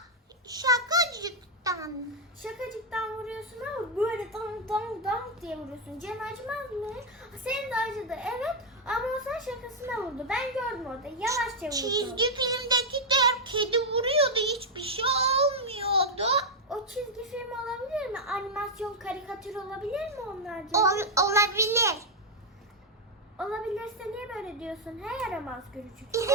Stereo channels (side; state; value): both; normal; correlation 0.00